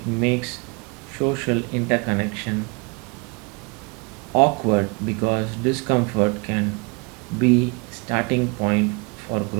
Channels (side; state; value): left; quieter; 30.8 dB